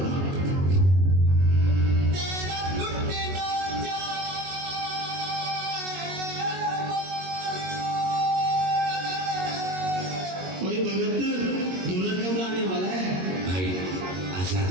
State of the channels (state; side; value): late; left; 22 ms